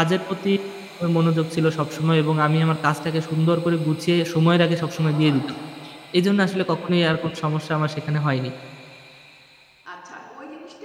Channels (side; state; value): both; identical; correlation 1.00